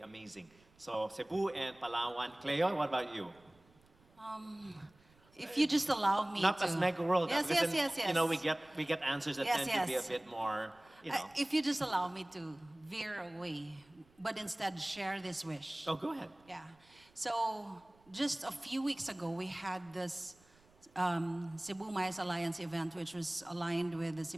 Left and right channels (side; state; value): right; noise; rumble, 30 dB below the sound